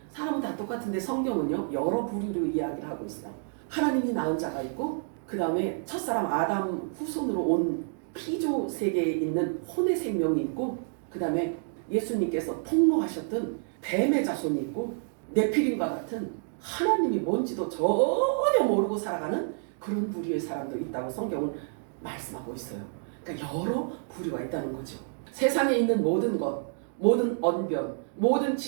사람은 다 똑같은데 성경은요 여러 부류로 이야기를 하고 있어요. 하나님이 낳은 자가 있고 그 다음에 첫사람 아담 후손으로 온 피조 세계에 있는 혼의 생명이 있고 그 다음에 예수님께서 폭로하셨던 뱀의 자손이 있고 네피림과 같은 하나님이 뭔지도 전혀 모르고 살아가는 그런 부류의 사람들이 있다고 성경은 말씀하고 있어요. 그러니까 여러 부류가 있다는 거죠. 세상에 있는 모든 것, 모든 언변, 모든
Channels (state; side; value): silent; left; 59 dB below the other